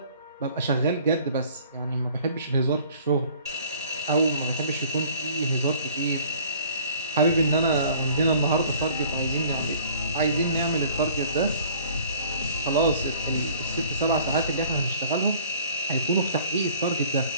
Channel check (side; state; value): both; inverted; correlation -0.52